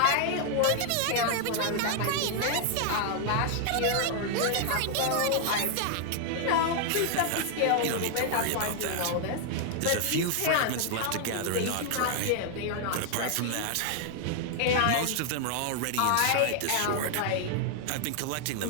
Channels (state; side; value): different; both; correlation 0.00